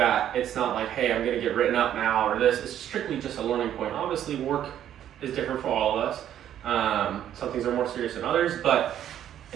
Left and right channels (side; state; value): left; quieter; 10.8 dB